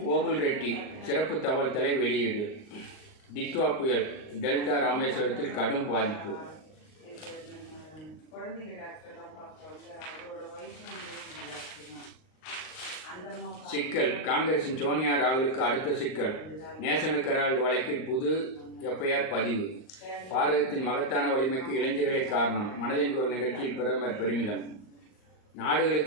ஓபுல் ரெட்டி சிறப்பு தகவல் தலை வெளியீடு. டிட்வா புயல் டெல்டா ராமேஸ்வரத்தில் கடும் பாதிப்பு. சிக்கல். காங்கிரசின் சோனியா ராகுலுக்கு அடுத்த சிக்கல். நேஷனல் ஹெரால்டு வழக்கில் புது FIR பதிவு. பாரதத்தின் மகத்தான வலிமைக்கு இளைஞர்களே காரணம். மனதின் குரல் நிகழ்ச்சியில் பிரதமர் பெருமிதம்.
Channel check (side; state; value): right; late; 38 ms